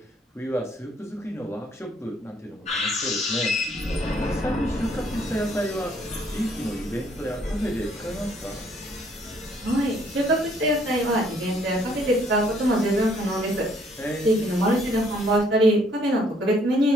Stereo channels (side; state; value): both; normal; correlation 0.64